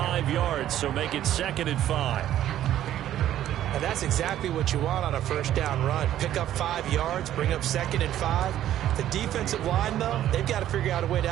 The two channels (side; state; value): left; quieter; 12.2 dB